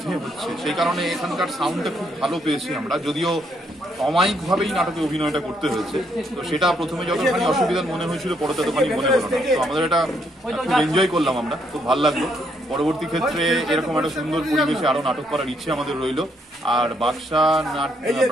হচ্ছে, সেই কারণে এখানকার সাউন্ডটা খুব ভালো পেয়েছি আমরা। যদিও অমায়িকভাবেই নাটকে অভিনয়টা করতে হয়েছে, তো সেটা প্রথমে যতখানি অসুবিধার মনে হয়েছিল পরে ততখানি মনে হলো না। তো আমাদের এটা খুব এনজয় করলাম, আমরা খুব ভালো লাগলো। পরবর্তী ক্ষেত্রে এরকম একটা সুন্দর পরিবেশে আরো নাটক করার ইচ্ছে আমাদের রইল। আর বাদশা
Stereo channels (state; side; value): normal; both; correlation 0.72